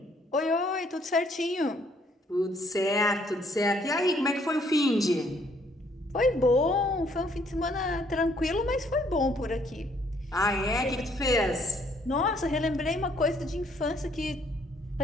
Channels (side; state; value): both; normal; correlation 0.65